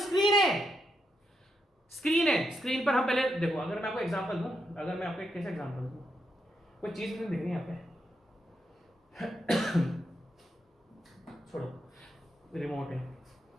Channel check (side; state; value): both; normal; correlation 0.82